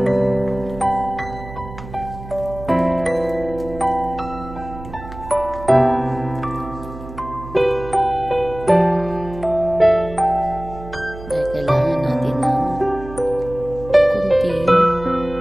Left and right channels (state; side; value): noise; right; hum, 14 dB below the sound